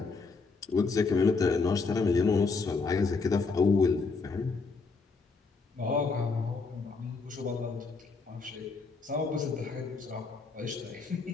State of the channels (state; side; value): quieter; right; 4.3 dB